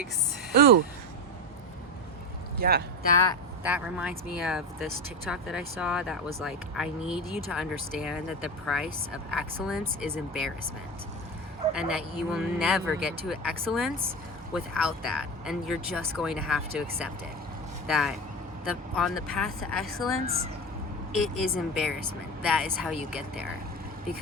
Ooh. Yeah. That reminds me of this TikTok that I saw that was like, I need you to understand that the price of excellence is embarrassment. And that you will never get to excellence without that. And you're just going to have to accept it. That on the path to excellence, it is embarrassment. That is how you get there.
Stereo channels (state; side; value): normal; both; correlation 0.22